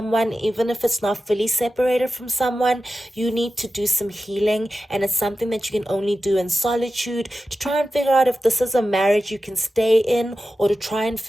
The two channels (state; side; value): normal; both; correlation 0.92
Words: even if it's not fully separated from someone. You need to do some healing, and it's something that you can only do in solitude to try and figure out if this is a marriage you can stay in, or to try and